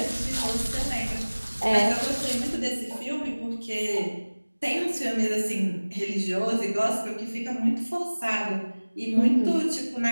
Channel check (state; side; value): inverted; both; correlation -1.00